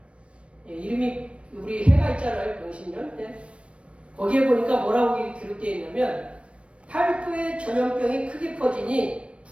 이름이 우리 해가 있잖아요. 병신년 때 거기에 보니까 뭐라고 기록되어 있냐면 팔도의 전염병이 크게 퍼지니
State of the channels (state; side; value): late; left; 0.061 ms